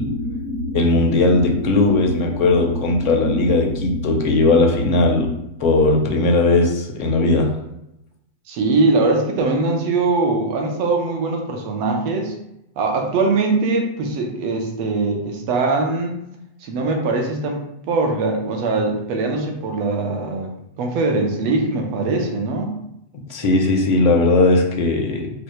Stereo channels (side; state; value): left; late; 8.2 ms